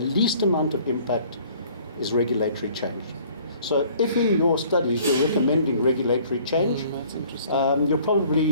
amount of impact is regulatory change. So if in your studies you're recommending regulatory change, you're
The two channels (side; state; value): both; inverted; correlation -0.55